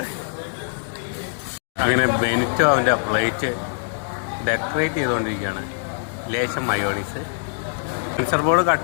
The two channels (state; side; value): silent; right; digital silence